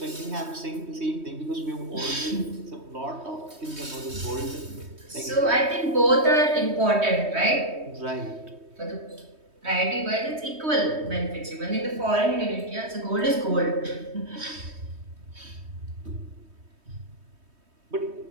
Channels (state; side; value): late; left; 3.2 ms